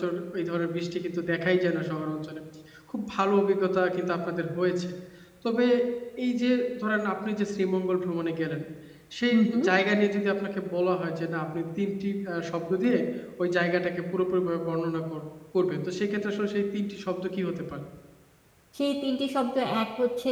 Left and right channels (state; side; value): identical; both; correlation 1.00